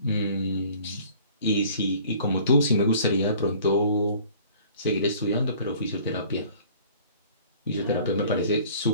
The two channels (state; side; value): inverted; both; correlation -0.51